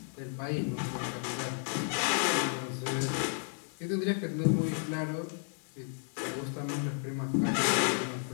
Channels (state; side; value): silent; right; 56 dB below the other